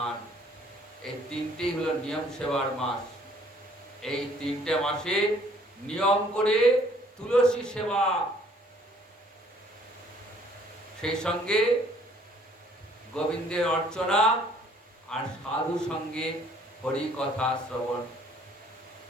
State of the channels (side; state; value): both; normal; correlation 0.60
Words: এই 3টেই হলো নিয়ম সেবার মাস। এই 3টে মাসে নিয়ম করে তুলসী সেবা, সেই সঙ্গে গোবিন্দের অর্চনা, আর সাধু সঙ্গে হরি কথা শ্রবণ।